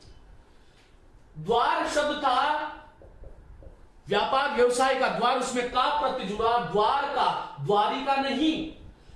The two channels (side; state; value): both; identical; correlation 1.00